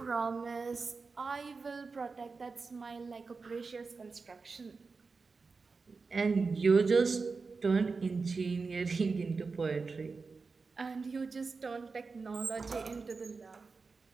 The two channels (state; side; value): quieter; left; 4.4 dB